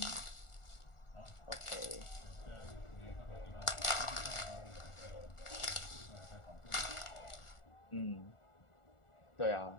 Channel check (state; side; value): late; right; 1.4 ms